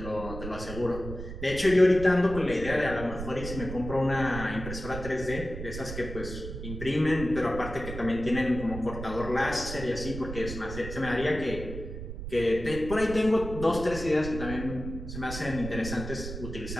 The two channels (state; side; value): noise; right; rumble, 8 dB below the sound